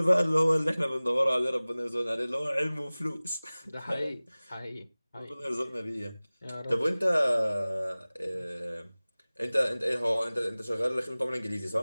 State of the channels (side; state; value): both; inverted; correlation -0.99